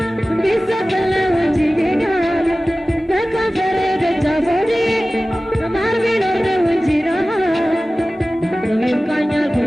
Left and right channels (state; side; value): normal; both; correlation 0.97